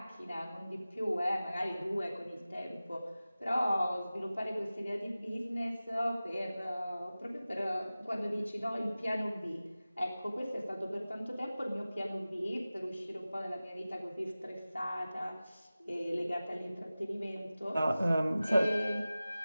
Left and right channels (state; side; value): inverted; both; correlation -0.96